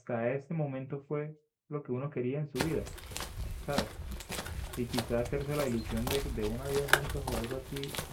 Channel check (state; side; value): identical; both; correlation 1.00